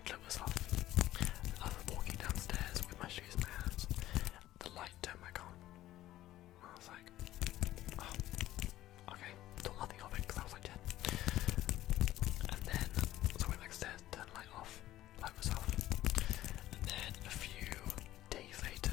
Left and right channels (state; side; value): quieter; right; 14.6 dB